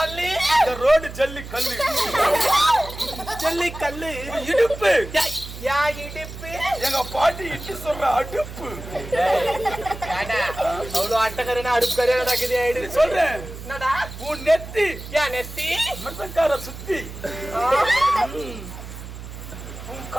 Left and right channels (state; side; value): noise; right; hum, 12 dB below the sound